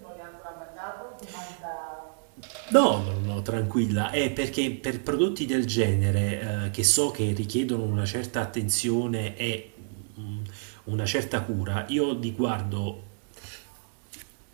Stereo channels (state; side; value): silent; left; digital silence